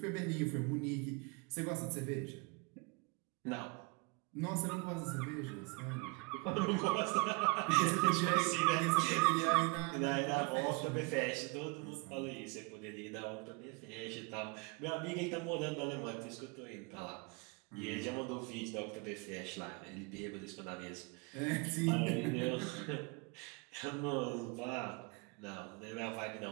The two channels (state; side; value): quieter; left; 27.7 dB